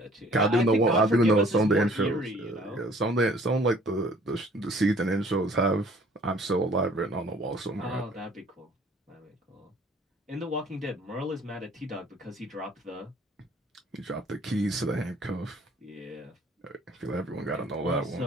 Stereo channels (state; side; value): normal; both; correlation 0.55